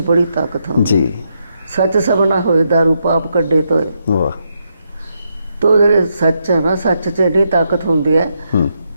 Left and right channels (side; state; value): both; inverted; correlation -0.81